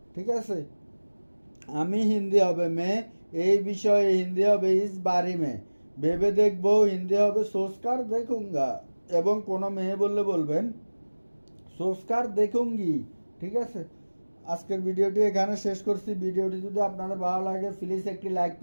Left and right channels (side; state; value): both; inverted; correlation -1.00